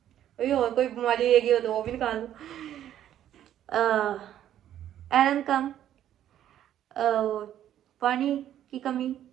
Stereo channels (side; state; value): left; quieter; 11.3 dB